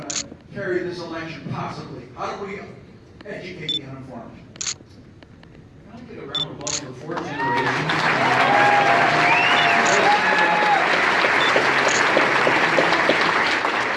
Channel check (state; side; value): identical; both; correlation 1.00